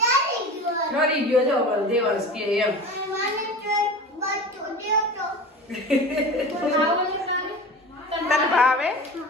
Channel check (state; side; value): normal; both; correlation 0.34